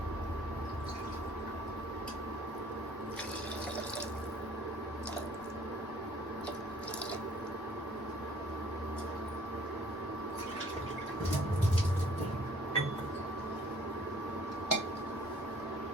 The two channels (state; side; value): normal; both; correlation 0.56